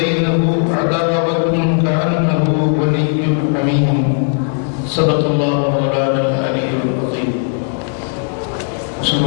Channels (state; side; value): silent; right; 58 dB below the other